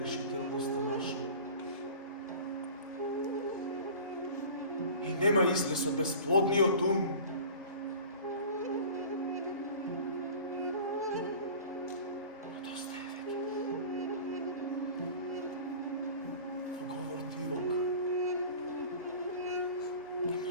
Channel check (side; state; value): both; inverted; correlation -0.41